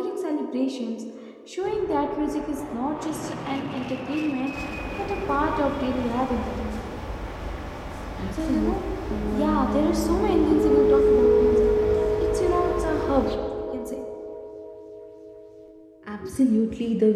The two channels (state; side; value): identical; both; correlation 1.00